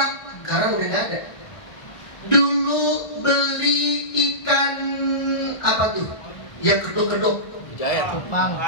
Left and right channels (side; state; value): right; late; 1.4 ms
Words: sekarang udah nggak ada. Dulu beli ikan apa tuh? Yang kedok-kedok.